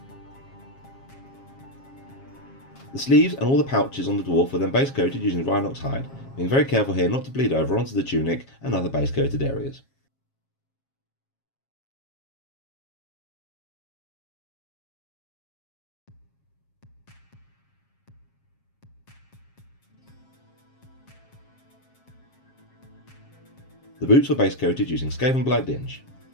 The sleeves and all the pouches on the dwarf were then base coated using rhinox hide, being very careful here not to bleed over onto the tunic and other base coated areas. The boots were base coated using Skaven Blight Dinge.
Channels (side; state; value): right; late; 7.4 ms